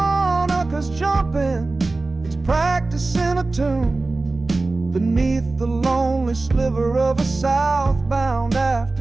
jumping, practicing a tune beneath the lonely sliver of a southbound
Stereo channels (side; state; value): left; quieter; 3.3 dB